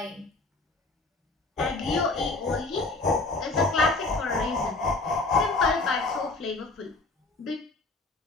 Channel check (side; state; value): right; quieter; 3.3 dB